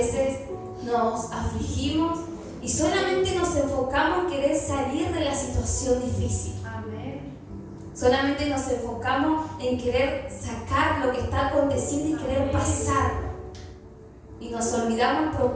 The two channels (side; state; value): both; identical; correlation 1.00